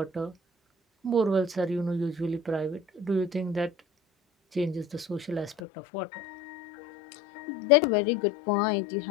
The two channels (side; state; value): right; drops out; at 5.6 s